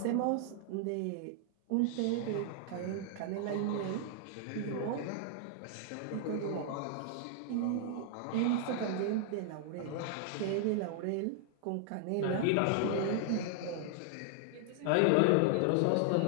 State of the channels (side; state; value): both; different; correlation -0.01